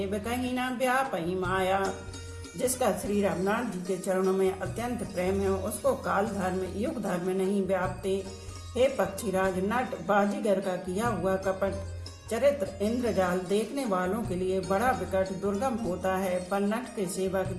कहीं न व्यापही माया। जिसका श्री रघुनाथ जी के चरणों में अत्यंत प्रेम है, उसको काल धर्म युग धर्म नहीं व्यापते। हे पक्षीराज, नट बाजीगर का किया हुआ कपट चरित्र इंद्रजाल देखने वालों के लिए बड़ा विकट दुर्गम होता है, पर नट के सेवक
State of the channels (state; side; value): identical; both; correlation 1.00